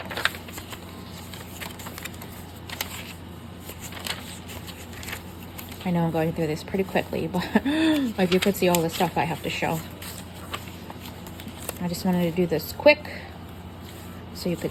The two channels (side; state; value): both; identical; correlation 1.00